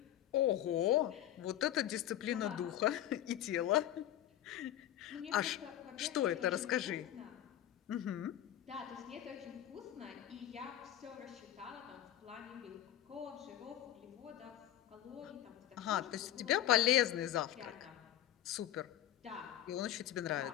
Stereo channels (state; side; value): quieter; right; 12.4 dB